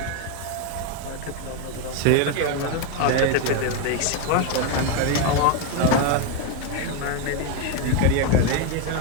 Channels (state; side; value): different; both; correlation 0.02